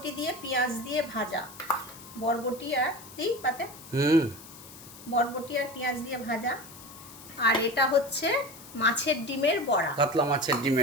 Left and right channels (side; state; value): left; noise; hiss, 17 dB below the sound